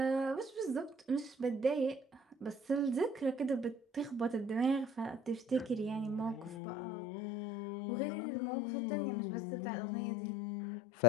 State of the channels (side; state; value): right; drops out; at 6.6 s